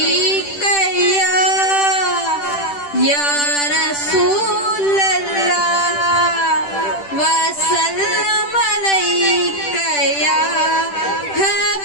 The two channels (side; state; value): right; late; 10 ms